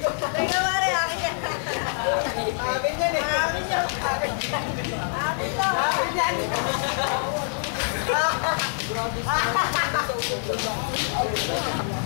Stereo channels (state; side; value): silent; right; 59 dB below the other